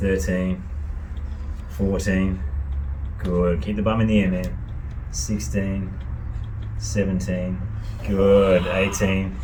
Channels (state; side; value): identical; both; correlation 1.00